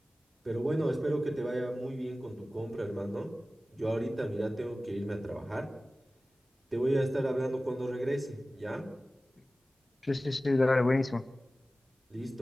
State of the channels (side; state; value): both; normal; correlation 0.96